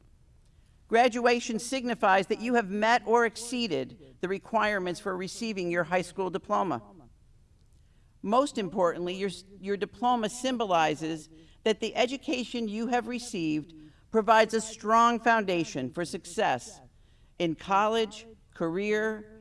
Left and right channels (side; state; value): both; identical; correlation 1.00